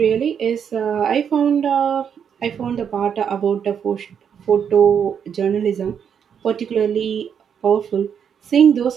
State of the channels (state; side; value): quieter; left; 7.8 dB